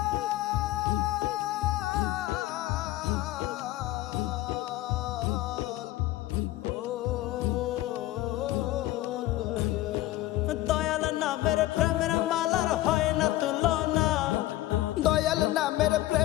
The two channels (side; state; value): right; quieter; 16.0 dB